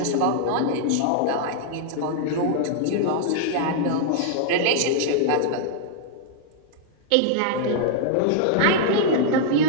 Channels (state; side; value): different; both; correlation -0.01